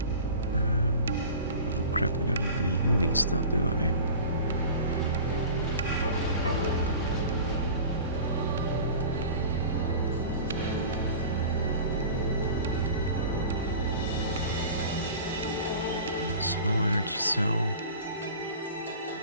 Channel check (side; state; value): both; inverted; correlation -0.39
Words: Oh crap, I don't have any healing stuff, do I? Small energy cell.